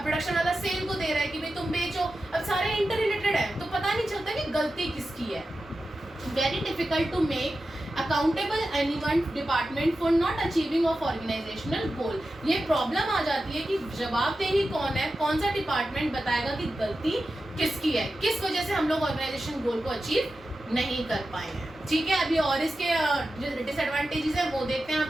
प्रोडक्शन वाला सेल को दे रहा है कि भाई तुम बेचो, अब सारे इंटर रिलेटेड है, तो पता नहीं चलता कि गलती किसकी है। Very difficult to make accountable anyone department for not achieving of organisational goal. ये प्रॉब्लम आ जाती है कि जवाबदेही कौन है, कौन सा डिपार्टमेंट बताएगा कि गलती किसकी है, किस वजह से हम लोग ऑर्गेनाइजेशन गोल को अचीव नहीं कर पाए हैं। ठीक है, अभी और इसके जो डिसएडवांटेजेस है वो देखते हैं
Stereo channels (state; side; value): normal; both; correlation 0.92